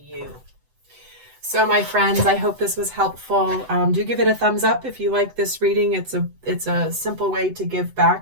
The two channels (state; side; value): late; left; 7.9 ms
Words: So my friends, I hope this was helpful. Do give it a thumbs up if you like this reading. It's a simple way to give